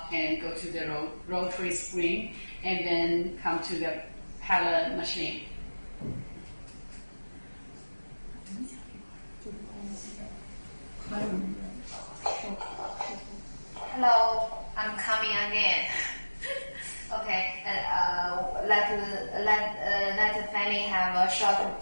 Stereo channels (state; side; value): inverted; both; correlation -1.00